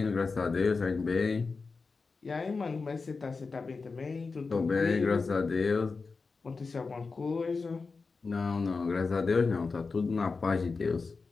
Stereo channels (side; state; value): right; quieter; 4.4 dB